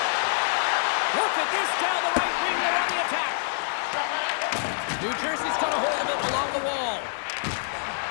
Look at this down the right wing. They're on the attack. New Jersey's got a hold of it along the wall.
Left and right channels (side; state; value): right; silent; digital silence